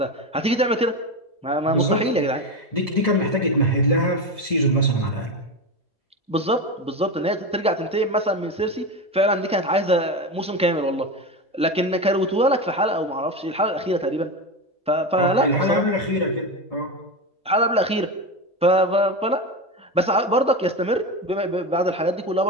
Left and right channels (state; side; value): normal; both; correlation 0.19